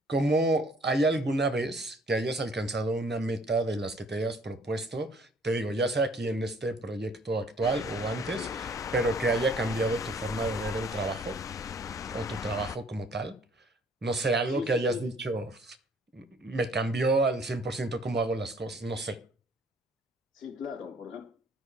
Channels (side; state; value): both; normal; correlation 0.59